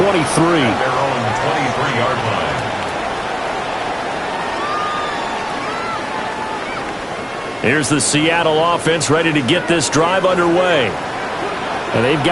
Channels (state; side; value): identical; both; correlation 1.00